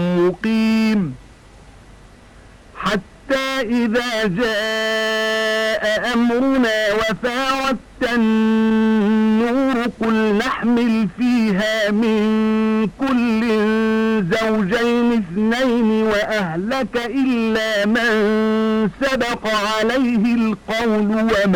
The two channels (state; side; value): identical; both; correlation 1.00